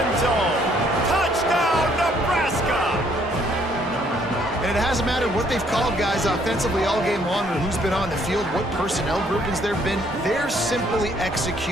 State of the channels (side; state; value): both; normal; correlation 0.66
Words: zone. Touchdown, Nebraska! And it hasn't mattered what they've called guys offensively all game long or who's been on the field, what personnel groupings there have been. They're simply